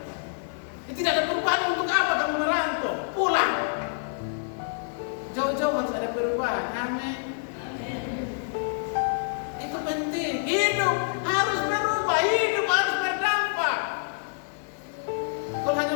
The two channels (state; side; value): silent; right; 60 dB below the other